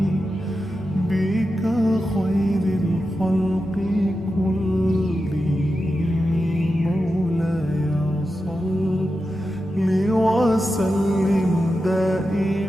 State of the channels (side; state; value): both; normal; correlation 0.90